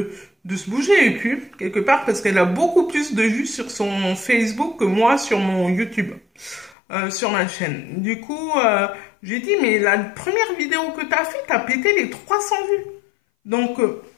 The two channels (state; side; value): drops out; right; at 6.8 s